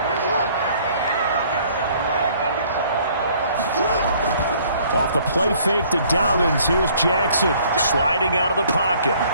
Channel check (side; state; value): both; inverted; correlation -0.59